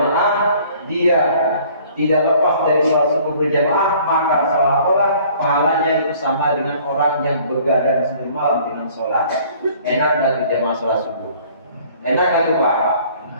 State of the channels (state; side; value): inverted; both; correlation -0.55